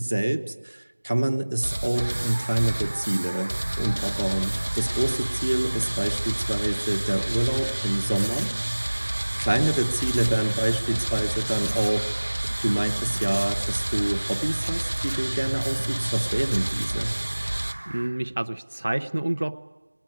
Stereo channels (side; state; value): both; inverted; correlation -1.00